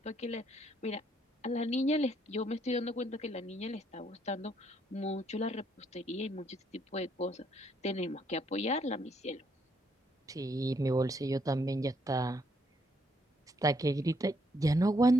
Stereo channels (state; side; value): normal; both; correlation 0.71